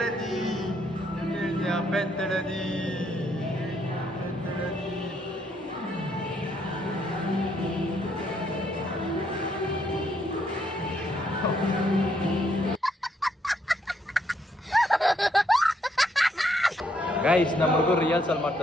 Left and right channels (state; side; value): normal; both; correlation 0.73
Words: ಬೆತ್ತಳದಿ ಗೈಸ್ ನಮ್ಮ ಹುಡುಗರು ರಿಹರ್ಸಲ್